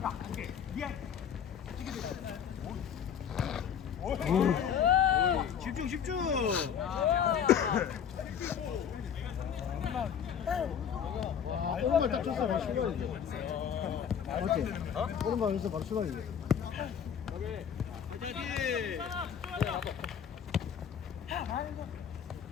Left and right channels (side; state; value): right; quieter; 8.1 dB